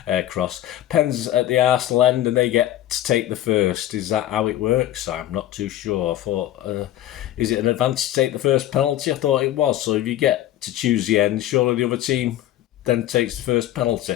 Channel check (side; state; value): right; quieter; 13.1 dB